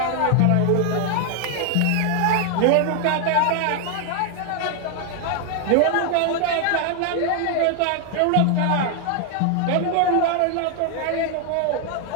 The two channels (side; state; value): both; different; correlation 0.00